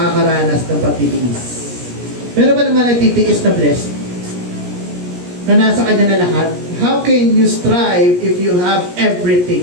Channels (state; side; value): late; left; 17 ms